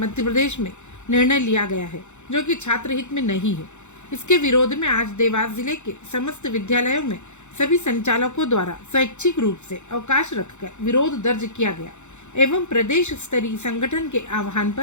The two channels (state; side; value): late; right; 0.83 ms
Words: प्रदेश में निर्णय लिया गया है, जो कि छात्र हित में नहीं है। इसके विरोध में आज देवास जिले के समस्त विद्यालयों में सभी संचालकों द्वारा स्वैच्छिक रूप से अवकाश रखकर विरोध दर्ज किया गया एवं प्रदेश स्तरीय संगठन के आह्वान